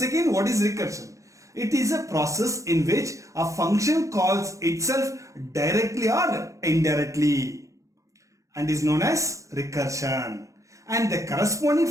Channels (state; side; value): late; left; 0.15 ms